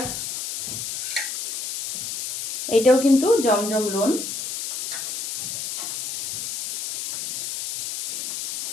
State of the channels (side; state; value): left; noise; hiss, 3 dB below the sound